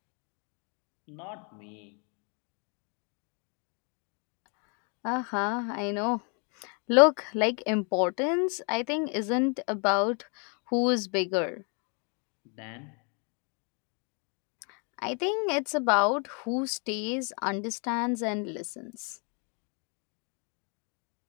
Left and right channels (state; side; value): quieter; right; 37.4 dB